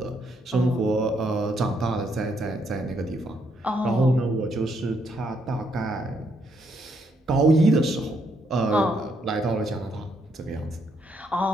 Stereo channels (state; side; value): normal; both; correlation 0.74